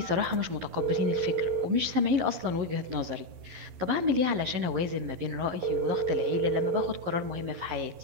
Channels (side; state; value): left; late; 11 ms